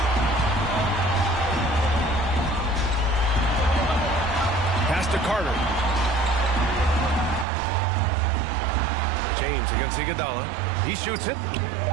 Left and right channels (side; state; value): left; drops out; at 7.5 s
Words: Pass to Carter. James against Iguodala. He shoots it.